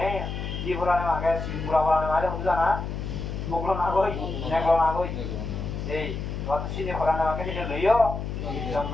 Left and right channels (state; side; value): noise; left; hum, 5 dB below the sound